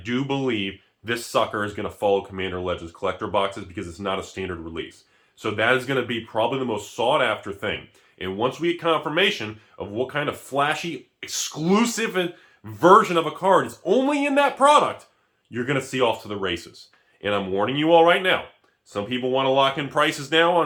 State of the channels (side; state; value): both; identical; correlation 1.00